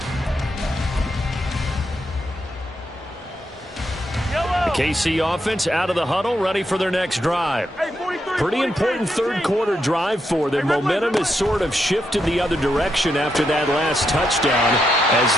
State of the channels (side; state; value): both; normal; correlation 0.82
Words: KC offense out of the huddle, ready for their next drive. Pretty important third quarter drive for them. Momentum has sort of shifted the other direction after that last touchdown as